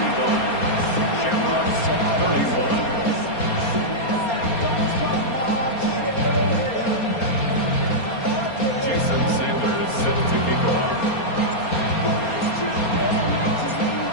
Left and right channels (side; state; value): right; late; 4.3 ms